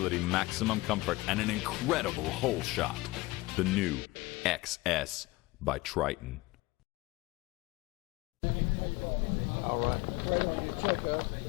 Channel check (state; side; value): quieter; right; 20.7 dB